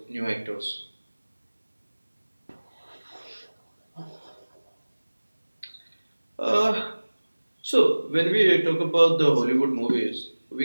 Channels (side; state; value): both; inverted; correlation -1.00